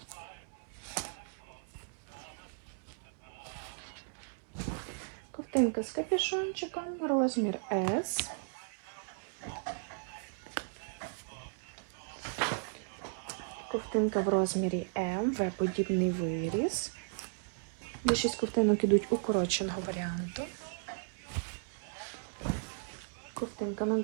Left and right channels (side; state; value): left; silent; digital silence